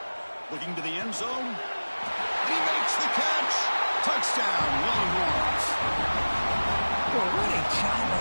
Looking to the end zone. He makes the catch. Touchdown, Longhorns. Well, what a job by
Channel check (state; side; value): inverted; both; correlation -1.00